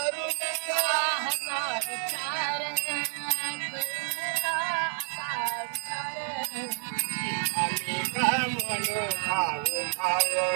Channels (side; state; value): left; silent; 55 dB below the other